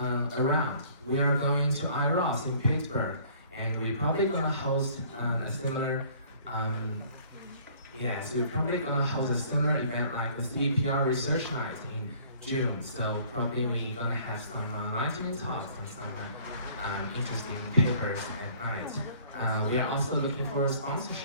around, we are going to IROS in Pittsburgh, and we're probably gonna host a similar, so we're probably gonna host a similar event like the CPR Research Night in June. So probably we're gonna have some lightning talks and some interesting papers at night. We are also looking for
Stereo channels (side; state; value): both; inverted; correlation -0.55